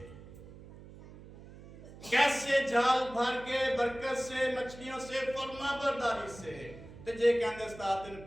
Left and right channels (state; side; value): noise; right; hum, 17 dB below the sound